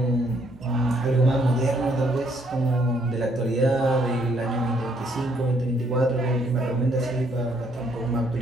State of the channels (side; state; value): both; normal; correlation 0.68